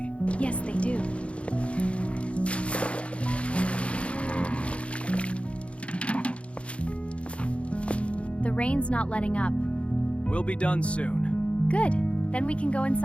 Yes, they do. The rain's not letting up. We'll be done soon. Good. Then we can go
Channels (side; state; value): right; late; 0.061 ms